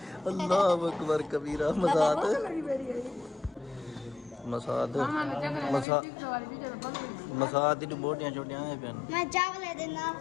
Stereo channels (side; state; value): right; drops out; at 5.9 s